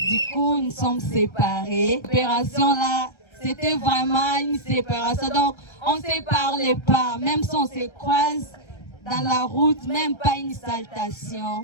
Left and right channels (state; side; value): late; right; 1.3 ms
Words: coup, nous sommes séparés. L'opération là, c'était vraiment une séparation. Donc, on ne se parlait pas. Même si on se croise dans la route, même pas une salutation.